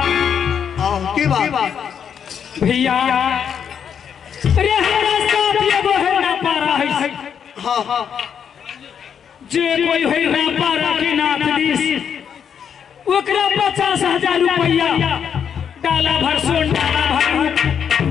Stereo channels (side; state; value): right; quieter; 7.8 dB